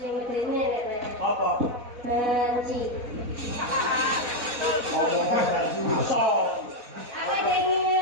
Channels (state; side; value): late; left; 4.1 ms